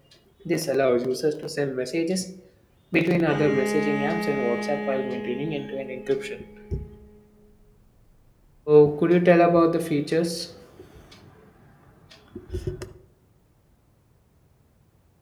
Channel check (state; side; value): identical; both; correlation 1.00